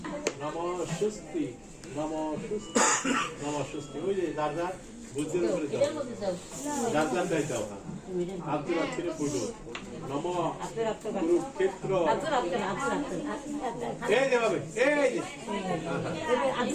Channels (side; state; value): both; identical; correlation 1.00